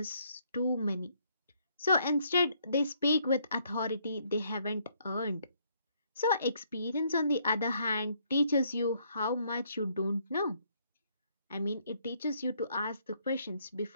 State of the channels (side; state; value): both; inverted; correlation -0.70